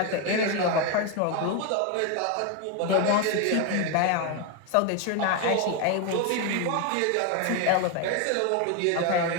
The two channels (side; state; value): both; different; correlation 0.01